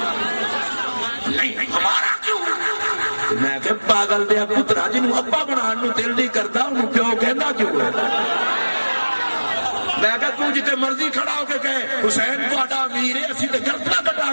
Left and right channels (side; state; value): both; inverted; correlation -1.00